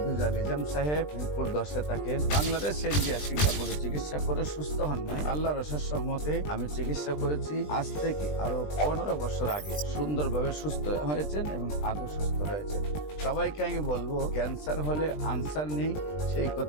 নিজাম সাহেব মিরপুর 10-এ থাকেন। বাংলাদেশ ইন্ডিয়া সিঙ্গাপুরে চিকিৎসা করে সুস্থ হন নাই। আল্লাহর অশেষ রহমতে আমি চিকিৎসা করেছি আজ থেকে আরো 15 বছর আগে। সুন্দরভাবে সুস্থ হয়েছেন এবং আদৌ সুস্থ রয়েছেন। সবাইকে আমি বলবো ক্যান্সার হলে আনসার নেই, সেই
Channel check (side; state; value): right; late; 20 ms